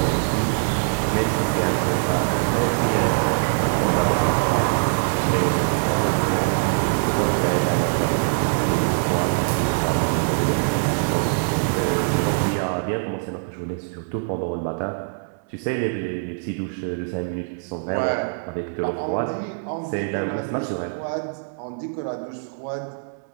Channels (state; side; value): silent; left; 63 dB below the other